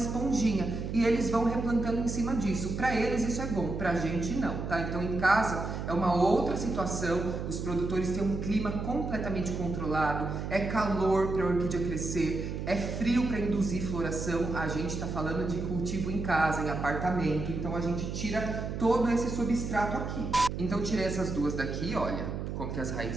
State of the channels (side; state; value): right; noise; hum, 5 dB below the sound